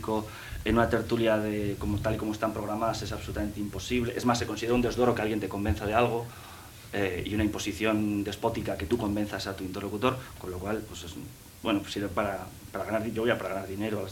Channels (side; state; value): both; identical; correlation 1.00